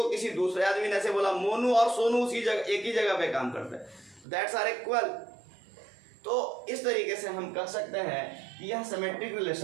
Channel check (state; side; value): drops out; left; at 4.2 s